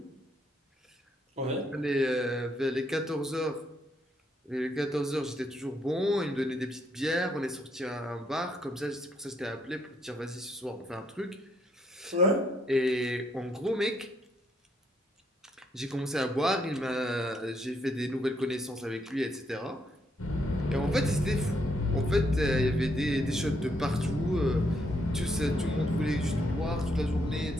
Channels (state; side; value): normal; both; correlation 0.74